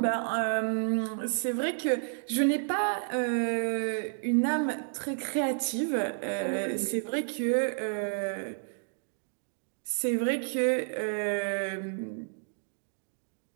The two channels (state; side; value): silent; left; digital silence